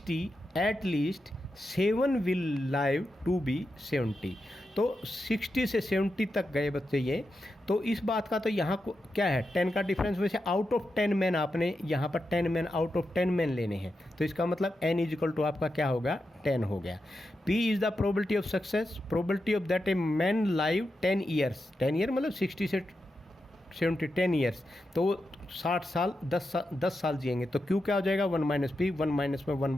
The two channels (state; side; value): normal; both; correlation 0.88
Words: at least 7 will live to be 70। तो 60 से 70 तक गए बच्चे ये। तो इस बात का तो यहाँ को क्या है, 10 का डिफरेंस। वैसे आउट ऑफ 10 मैन आपने यहाँ पर 10 मैन आउट ऑफ 10 मैन लेने हैं, तो इसका मतलब n इज इक्वल टू आपका क्या होगा, 10 हो गया। P is the probability of success, probability of that a man live 10 years, 10 year मतलब 60 से 70, 10 ईयर्स, तो वो 60 साल 10 साल जिएंगे। तो Q क्या हो जाएगा, 1 माइनस पी, 1 माइनस में 1